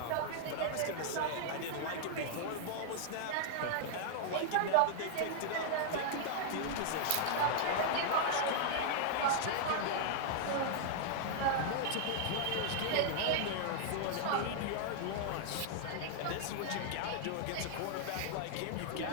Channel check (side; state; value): both; different; correlation -0.01